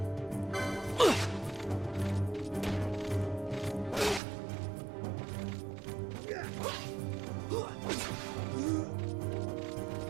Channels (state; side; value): drops out; left; at 4.2 s